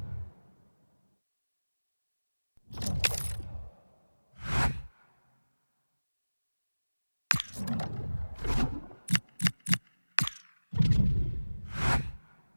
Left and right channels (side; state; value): both; inverted; correlation -1.00